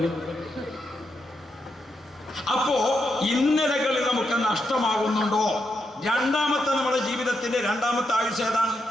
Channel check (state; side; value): normal; both; correlation 0.82